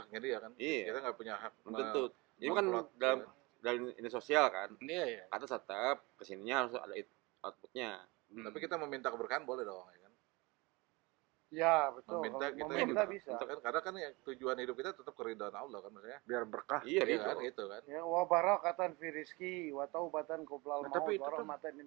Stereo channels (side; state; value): left; quieter; 25.0 dB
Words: dia kan. Iya. Kita nggak punya hak. Belum tentu. Ini kan memplot. dalam ini sosial kan. Iya, iya. Kata tetap kesininya harus ada outputnya. Tapi kita meminta keberkahan boleh dong, ya kan? Ya betul. Meminta Kalau kita meminta bisa. karena kan ya, tujuan hidup kita tetap keridhaan Allah kan maksudnya. Biar berkah. Iya, Iya gitu. kan, itu kan. Ya wa barakatan fi rizki wa taubatan qoblal Nah, maut tapi itu wa kan- rahmatan